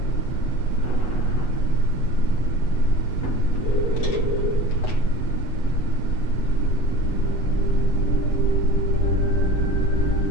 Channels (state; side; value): late; right; 8.1 ms